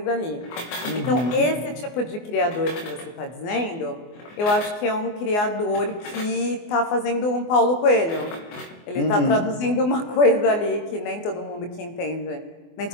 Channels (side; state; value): right; late; 24 ms